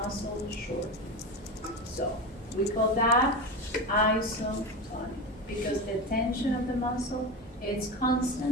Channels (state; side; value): normal; both; correlation 0.23